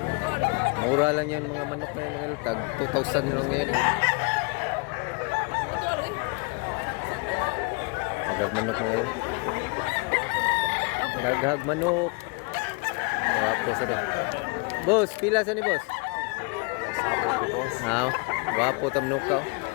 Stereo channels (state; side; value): quieter; right; 32.3 dB